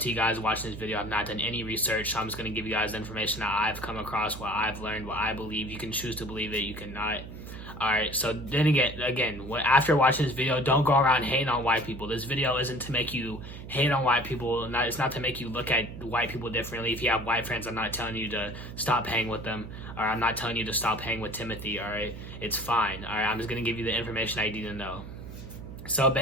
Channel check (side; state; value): right; noise; hum, 11 dB below the sound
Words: you guys watching this video have not done any research, so I'm just going to give you guys the information that I've come across, what I've learned, what I believe. You can choose to believe it, you cannot. Alright, so then again, after watching this video, don't go around hating on white people. This video isn't to make you hate on white people. It's not to make you look at white people differently. If you have white friends, I'm not telling you to stop hanging with them. Or I'm not telling you to stop hanging with Timothy, alright? It's fine, alright? I'm just going to give you the information I need to know. So